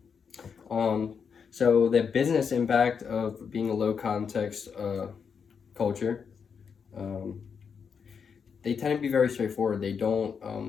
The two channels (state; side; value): quieter; right; 6.4 dB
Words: So the business impact of being a low context culture, they tend to be very straightforward. They don't